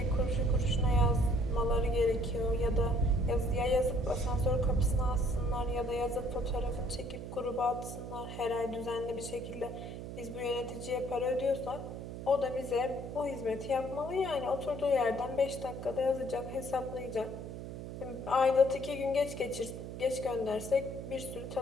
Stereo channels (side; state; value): right; noise; hum, 9 dB below the sound